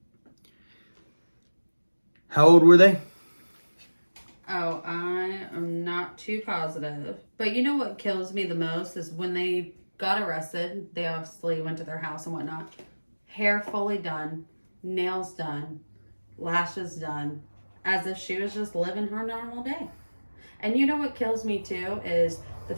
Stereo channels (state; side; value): inverted; both; correlation -1.00